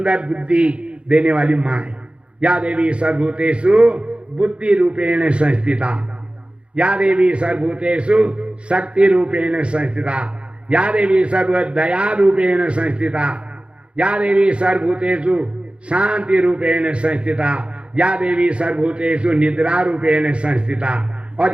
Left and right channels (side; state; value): left; late; 0.058 ms